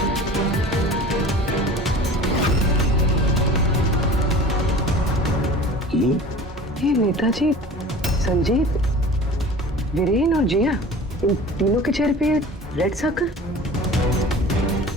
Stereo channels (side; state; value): both; normal; correlation 0.41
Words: ये नेताजी, संजीत, वीरेन और जिया, इन तीनों के चेहरे पे रेड सर्कल।